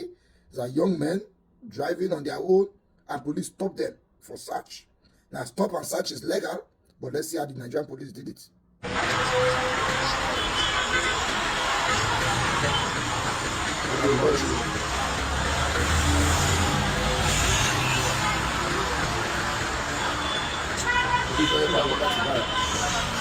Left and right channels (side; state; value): both; identical; correlation 1.00